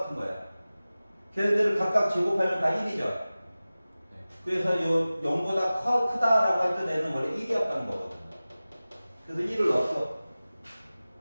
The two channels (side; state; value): both; inverted; correlation -0.97